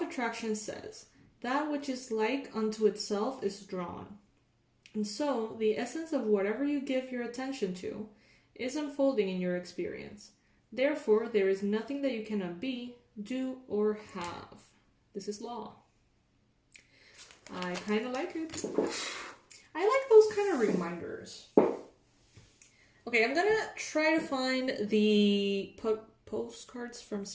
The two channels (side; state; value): both; identical; correlation 1.00